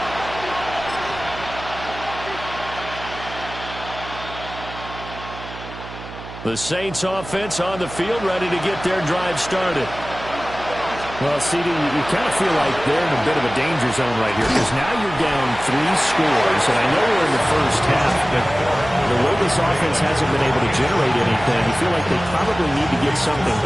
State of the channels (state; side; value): noise; right; hum, 13 dB below the sound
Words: The Saints offense on the field, ready to get their drive started. Well, CD, you kind of feel like they're in a bit of a danger zone right here because now you're down 3 scores, and I know we're in the first half, but the way this offense hasn't been able to generate anything, you feel like they probably need to get something